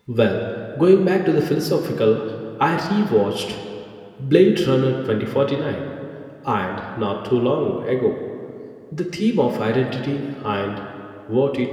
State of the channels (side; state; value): both; identical; correlation 1.00